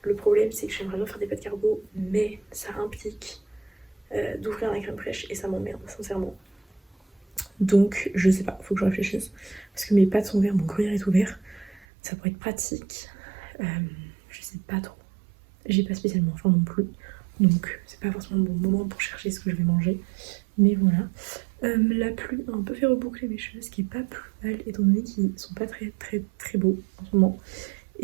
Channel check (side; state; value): left; drops out; at 11.9 s